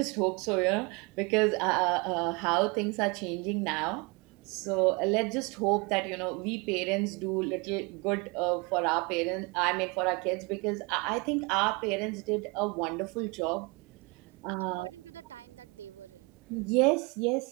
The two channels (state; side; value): quieter; left; 28.3 dB